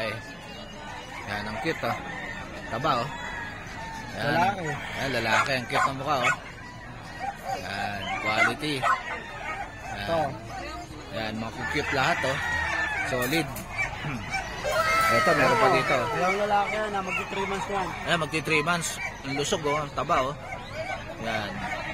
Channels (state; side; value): identical; both; correlation 1.00